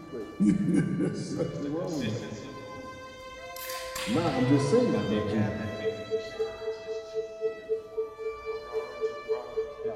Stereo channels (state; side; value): identical; both; correlation 1.00